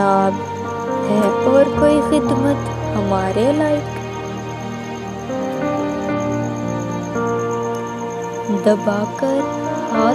है और कोई खिदमत हमारे लायक। दबाकर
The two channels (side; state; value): both; identical; correlation 1.00